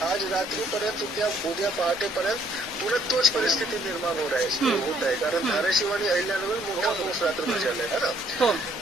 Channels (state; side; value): normal; both; correlation 0.66